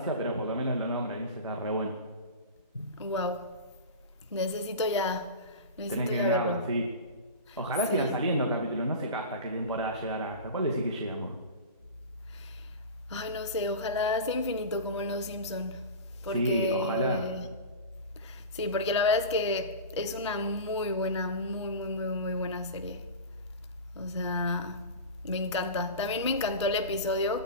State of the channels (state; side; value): inverted; both; correlation -0.30